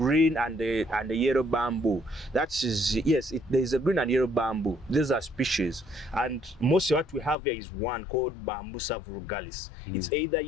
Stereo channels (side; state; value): right; drops out; at 7.4 s